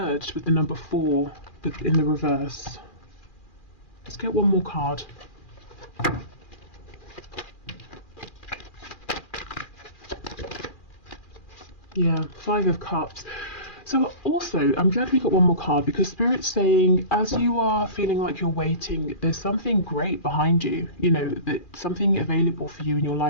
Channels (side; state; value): right; late; 2.4 ms